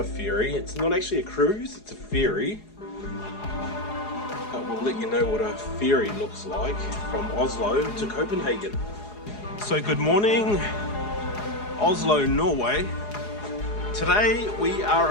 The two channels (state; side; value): late; right; 4.8 ms